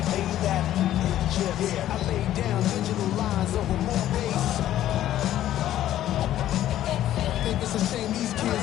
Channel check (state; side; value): quieter; right; 12.7 dB